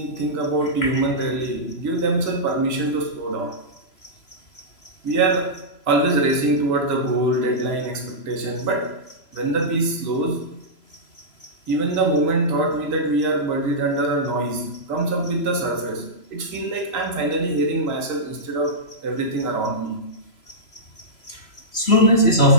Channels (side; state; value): right; late; 3.0 ms